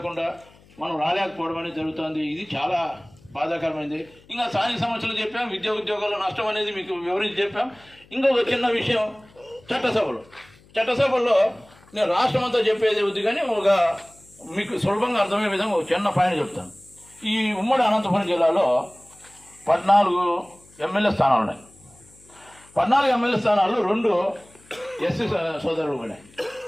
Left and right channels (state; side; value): noise; left; hum, 27 dB below the sound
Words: మనం రాలేకపోవడం అనేది జరుగుతుంది. ఇది చాలా బాధాకరమైంది. ఇంకా స్థానిక సమస్యలు చెప్పాం, విద్యా ఉద్యోగాల నష్టం అనేది మీకు వివరించి చెప్పాం. ఇంకొక చిన్న విషయం, చట్టసభల్లో నేను రాష్ట్రం అంతా చెప్పేది వద్దు కానీ ఒక మీకు సులభంగా అర్థమయ్యే విధంగా ఒక చిన్న పాయింట్ చెప్తాను. ఈ ఉమ్మడి అనంతపురం జిల్లాలో 14 ఎమ్మెల్యే స్థానాలు ఉన్నాయి. 14 ఎమ్మెల్యే స్థానాలు 2 ఎస్సీ సోదరులు పోయినాయి.